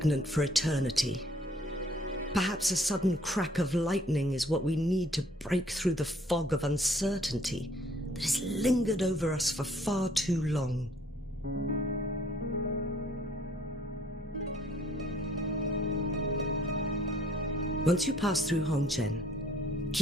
for eternity. Perhaps a sudden crack of lightning is what we need to break through the fog of uncertainty that has lingered over us for far too long. Once you pass through Hongzhen,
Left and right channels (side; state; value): both; normal; correlation 0.61